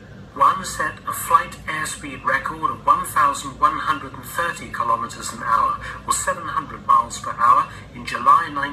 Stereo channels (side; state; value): both; identical; correlation 1.00